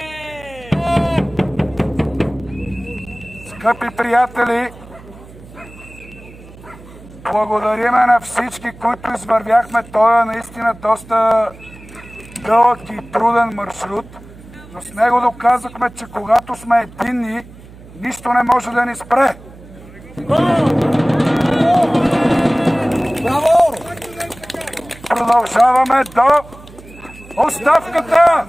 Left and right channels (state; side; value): noise; right; hum, 20 dB below the sound